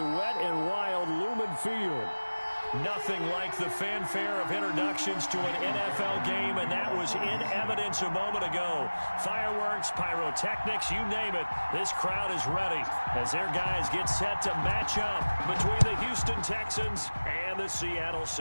wet and wild Lumen Field. Nothing like the fanfare of introductions to an NFL game, and that was in evidence a moment ago. Fireworks, pyrotechnics, you name it. This crowd is ready as their guys get set to match up between the Houston Texans and the Seattle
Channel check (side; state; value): both; inverted; correlation -1.00